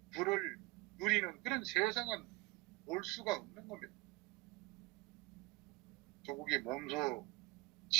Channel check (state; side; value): quieter; left; 22.9 dB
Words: 부를 누리는 그런 세상은 올 수가 없는 겁니다. 조국이 몸소